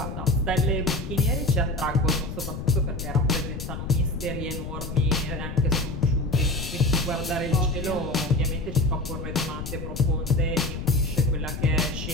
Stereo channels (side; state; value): left; noise; rumble, 7 dB below the sound